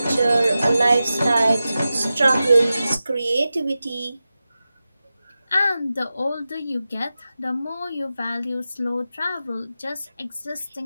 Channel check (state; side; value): inverted; both; correlation -0.93